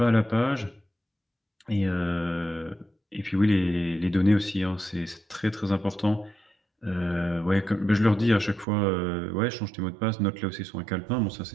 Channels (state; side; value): drops out; left; at 8.7 s